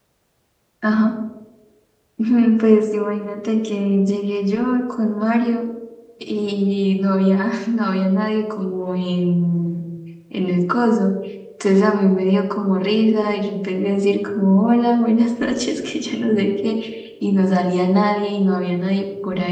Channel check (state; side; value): identical; both; correlation 1.00